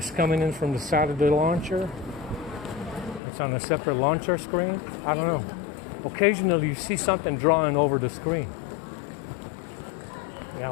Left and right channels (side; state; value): right; drops out; at 3.2 s